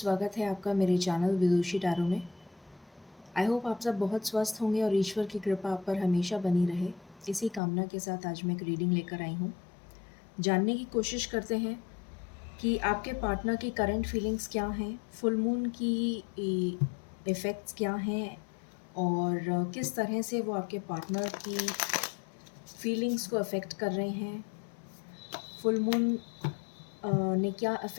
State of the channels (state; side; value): drops out; right; at 7.6 s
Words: है आपका मेरे चैनल विदुषी टैरो में। आई होप आप सब बहुत स्वस्थ होंगे और ईश्वर की कृपा आप पर हमेशा बनी रहे। इसी कामना के साथ आज मैं एक रीडिंग लेकर आई हूँ। जानने की कोशिश करते हैं कि आपके पार्टनर की करंट फीलिंग्स क्या हैं, फुल मून की इफ़ेक्ट्स क्या हैं और किस तरह से वो आपके पार्टनर की फीलिंग्स को अफ़ेक्ट कर रहे हैं। फुल मून ने क्या